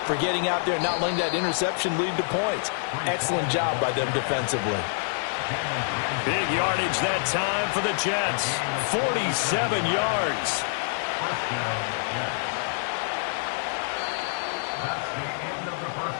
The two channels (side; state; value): right; silent; digital silence